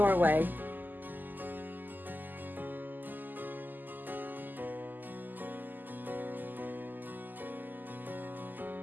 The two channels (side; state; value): left; late; 0.087 ms